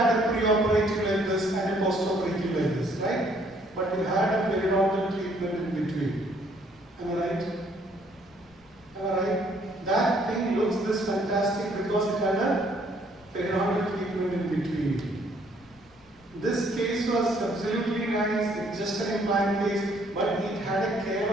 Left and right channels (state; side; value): noise; left; rumble, 30 dB below the sound